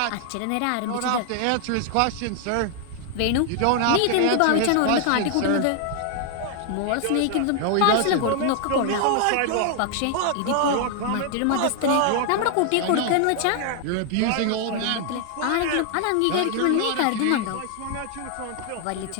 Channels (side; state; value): both; different; correlation 0.00